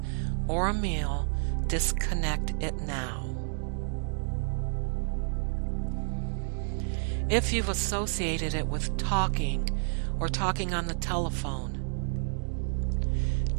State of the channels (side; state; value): left; silent; digital silence